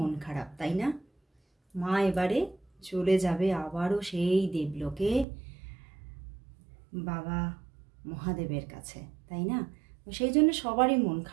খারাপ, তাই না? মা এবারে চলে যাবে আবারও সেই দেবলোকে, বাবা মহাদেবের কাছে, তাই না? সেই জন্য সবারই মন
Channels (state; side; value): drops out; left; at 5.2 s